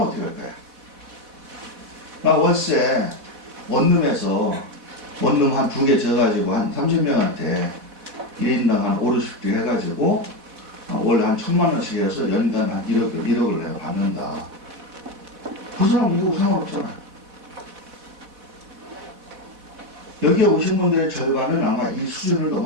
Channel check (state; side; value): late; left; 4.1 ms